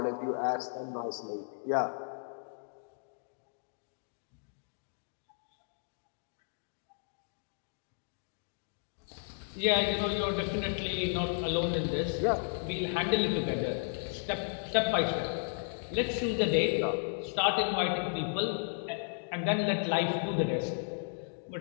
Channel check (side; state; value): right; silent; digital silence